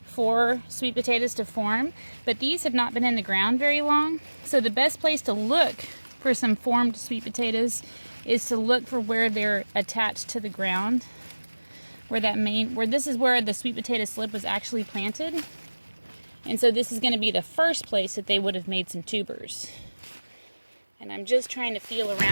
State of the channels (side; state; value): both; inverted; correlation -1.00